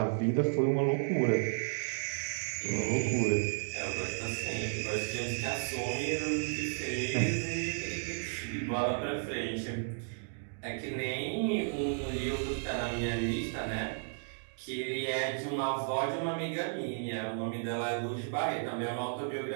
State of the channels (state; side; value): silent; left; digital silence